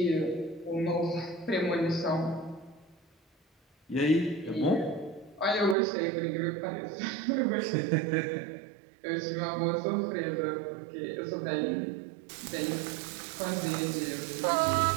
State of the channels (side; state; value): left; drops out; at 5.8 s